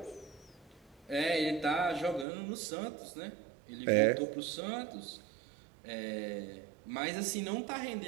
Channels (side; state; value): left; drops out; at 2.2 s